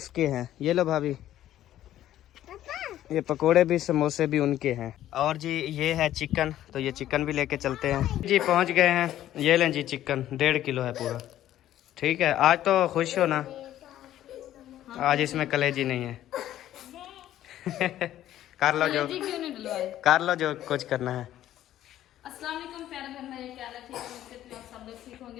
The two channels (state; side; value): quieter; right; 12.7 dB